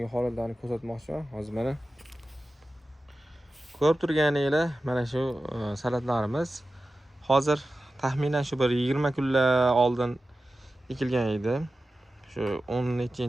holatlarni ko'rsatmoqchiman. Hozir mana ko'rib turganinglar, mana shu salatlarimiz hozir taxminan shu bir 20 kunlar oldin ekilgan edi. Shu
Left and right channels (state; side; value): normal; both; correlation 0.94